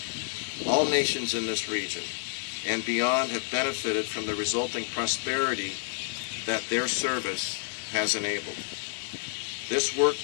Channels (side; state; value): right; silent; digital silence